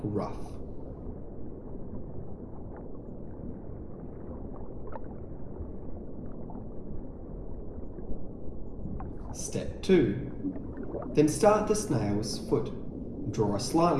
rough. Step 2. Then start the snail's foot. Draw a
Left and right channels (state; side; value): identical; both; correlation 1.00